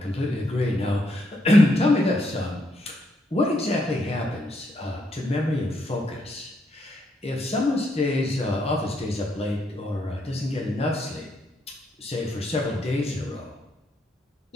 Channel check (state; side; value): normal; both; correlation 0.76